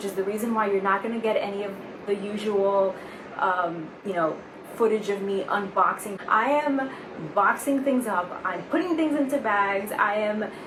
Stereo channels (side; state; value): both; identical; correlation 1.00